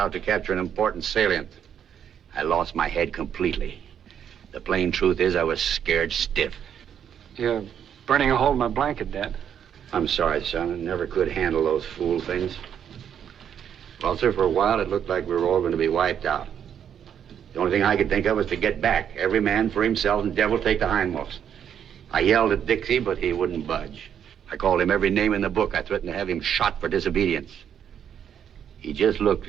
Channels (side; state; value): left; quieter; 8.8 dB